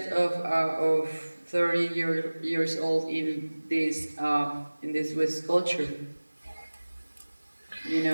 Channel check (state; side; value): inverted; both; correlation -1.00